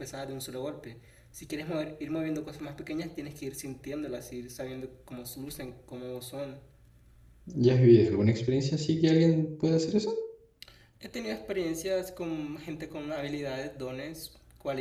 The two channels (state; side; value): identical; both; correlation 1.00